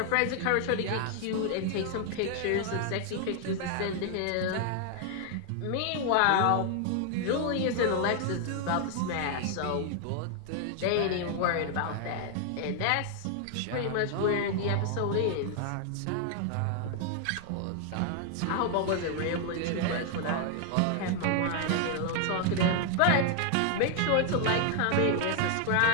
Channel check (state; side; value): different; both; correlation 0.00